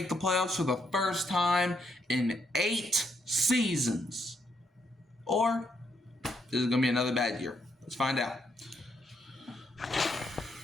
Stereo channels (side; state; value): both; normal; correlation 0.76